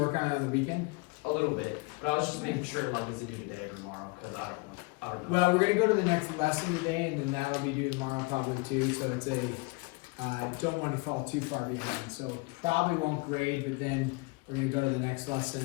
on it on the weekend? a little bit, but I was just making sure like is it due today or tomorrow because I don't know. Well, we're going to go to the next lesson today, and then that'll be due tomorrow probably too. So it's a, don't want to fall too far behind. So probably won't grade, but then we're going to go to the next lesson.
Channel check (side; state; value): right; quieter; 27.7 dB